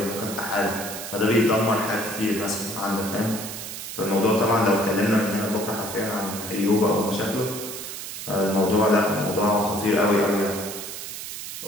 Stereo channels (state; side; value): noise; right; hiss, 8 dB below the sound